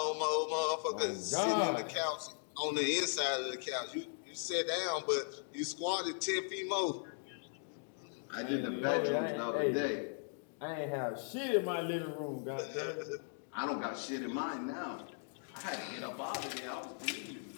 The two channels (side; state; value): right; silent; 52 dB below the other